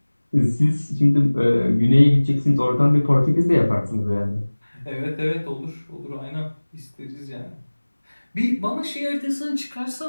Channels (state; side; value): inverted; both; correlation -1.00